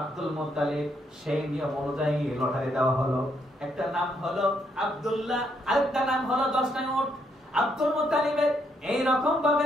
মুত্তালিব সেই নিয়ম অনুযায়ী লটারি দেওয়া হলো। একটা নাম হলো আব্দুল্লাহ, আরেকটা নাম হলো 10টা উট। আব্দুল মুত্তালিবের এই রকম ভাবে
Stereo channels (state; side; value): normal; both; correlation 0.75